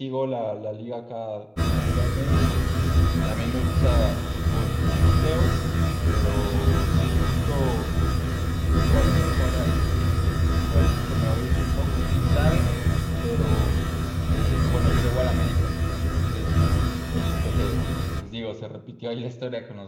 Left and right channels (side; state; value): both; identical; correlation 1.00